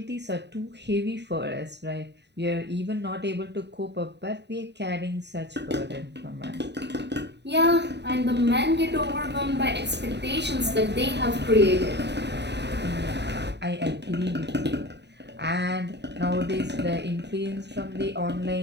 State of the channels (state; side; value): late; left; 0.50 ms